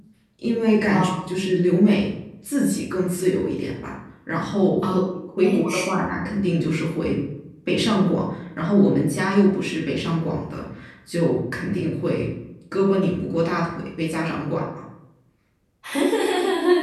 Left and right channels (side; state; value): both; identical; correlation 1.00